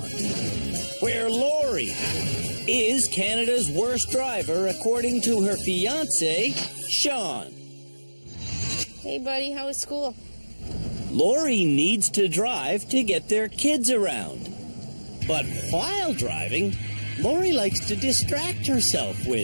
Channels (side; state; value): both; inverted; correlation -1.00